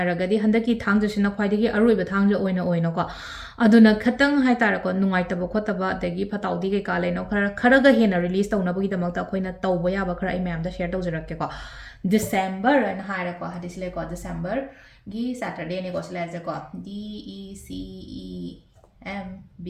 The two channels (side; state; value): both; identical; correlation 1.00